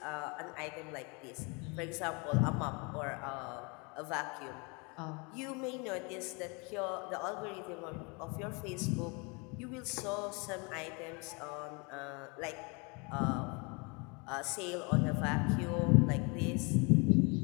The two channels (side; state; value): right; quieter; 30.8 dB